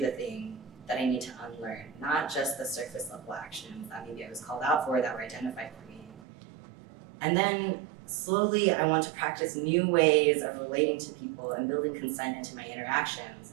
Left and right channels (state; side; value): drops out; left; at 6.2 s